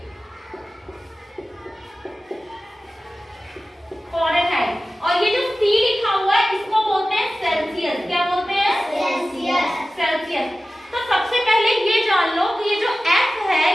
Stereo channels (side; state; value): both; normal; correlation 0.95